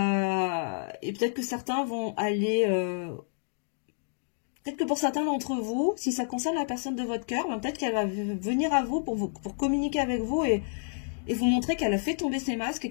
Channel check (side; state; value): right; silent; digital silence